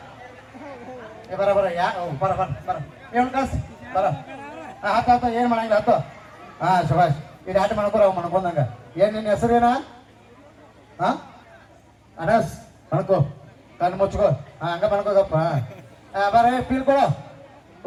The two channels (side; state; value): both; identical; correlation 1.00